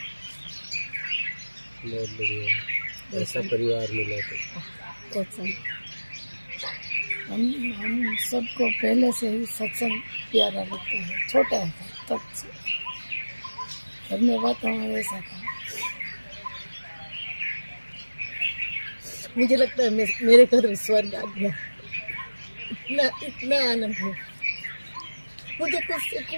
बहुत बढ़िया, ऐसा परिवार मिला तो हम सबको पहले से ही सत्संग प्यारा लगता है, छोटा है तब से घर में वातावरण ऐसा था। मुझे लगता है मेरे घर में स्वर्ग आ गया। इतना आनंद है, मुझे कुछ से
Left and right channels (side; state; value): both; inverted; correlation -1.00